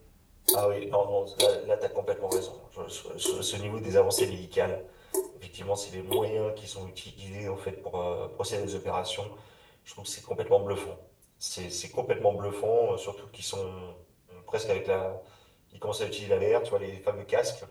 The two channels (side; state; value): both; identical; correlation 1.00